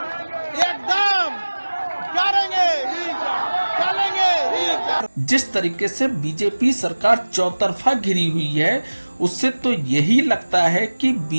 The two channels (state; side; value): inverted; both; correlation -1.00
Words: एकदम चलेंगे। जिस तरीके से बीजेपी सरकार चौतरफा घिरी हुई है, उससे तो यही लगता है कि